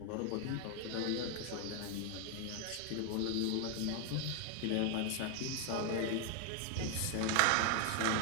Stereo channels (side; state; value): both; different; correlation 0.01